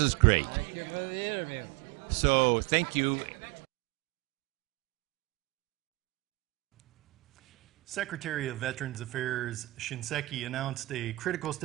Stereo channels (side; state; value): left; quieter; 20.7 dB